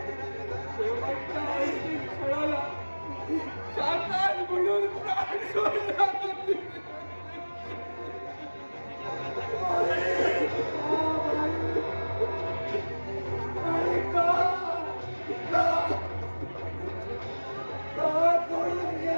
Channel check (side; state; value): both; inverted; correlation -1.00